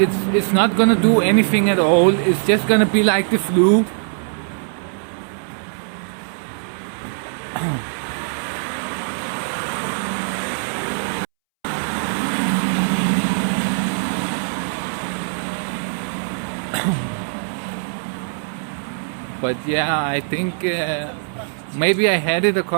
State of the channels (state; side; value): silent; left; 65 dB below the other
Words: not gonna do anything at all. It's just gonna be like the flu. But yeah, I think maybe I had it a